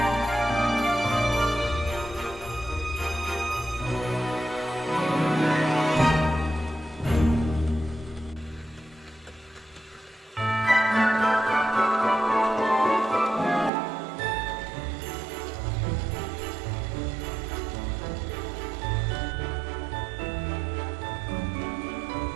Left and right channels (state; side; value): drops out; left; at 13.7 s